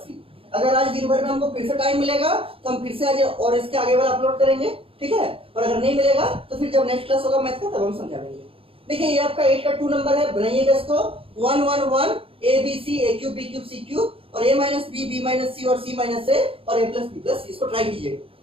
अगर आज दिन भर में हमको फिर से टाइम मिलेगा तो हम फिर से आज और इसके आगे वाला अपलोड करेंगे, ठीक है। और अगर नहीं मिलेगा तो फिर जब नेक्स्ट क्लास होगा मैथ का तब हम समझा देंगे। देखिए ये आपका 8 का 2 नंबर है, बनाइएगा इसको 1 1 1 a b c a cube b cube c cube और a minus b b minus c और c माइनस a और a plus b plus c, इसको ट्राई कीजिएगा,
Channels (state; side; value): late; left; 0.27 ms